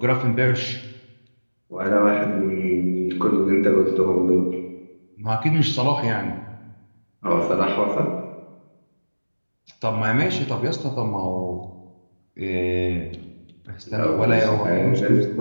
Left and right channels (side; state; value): both; inverted; correlation -1.00